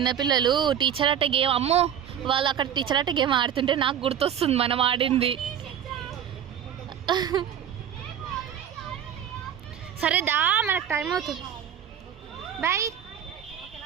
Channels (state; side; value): quieter; left; 9.4 dB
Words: టీచర్ ఆట గేమ్, అమ్మో వాళ్ళు అక్కడ టీచర్ ఆట గేమ్ ఆడుతుంటే నాకు గుర్తొస్తుంది మనం ఆడింది. సరే దా, మనకు టైం అవుతుంది. బాయ్.